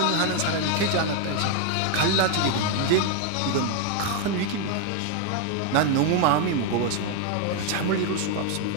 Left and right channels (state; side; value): different; both; correlation 0.01